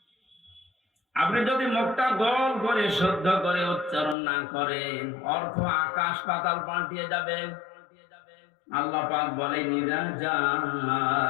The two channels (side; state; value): right; drops out; at 4.2 s